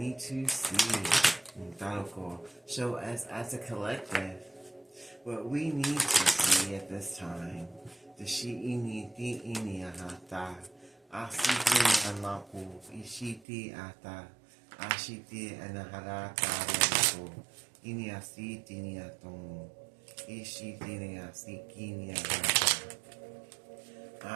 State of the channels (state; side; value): drops out; left; at 13.5 s